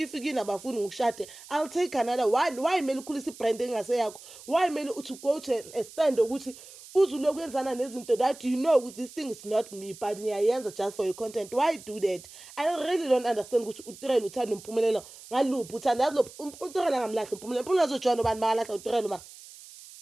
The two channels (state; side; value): noise; right; hiss, 18 dB below the sound